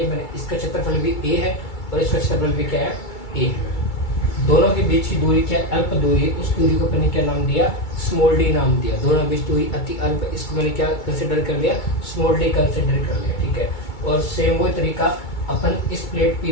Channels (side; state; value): right; late; 2.3 ms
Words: मैंने। इसका क्षेत्रफल भी a है और इसका क्षेत्रफल भी क्या है, a है। दोनों के बीच की दूरी क्या है, अल्प दूरी। उस दूरी को मैंने क्या नाम दिया, स्मॉल डी नाम दिया। दोनों के बीच दूरी अति अल्प, इसको मैंने क्या कंसिडर कर लिया, स्मॉल डी कंसिडर कर लिया, ठीक है। और सेम वही तरीका अपन इस प्लेट